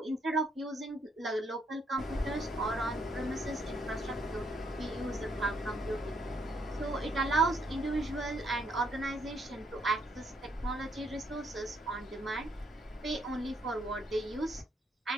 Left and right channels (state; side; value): normal; both; correlation 0.72